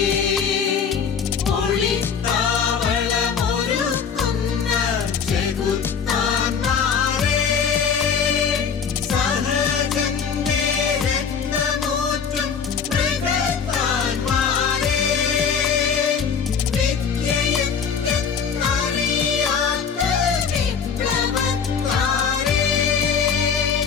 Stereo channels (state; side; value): quieter; right; 6.5 dB